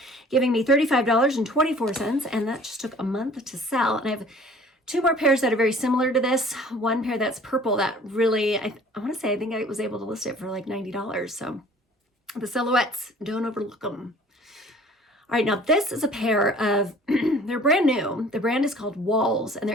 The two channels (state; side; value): normal; both; correlation 0.50